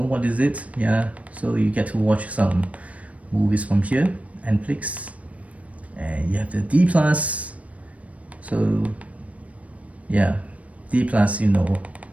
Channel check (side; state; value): left; late; 0.066 ms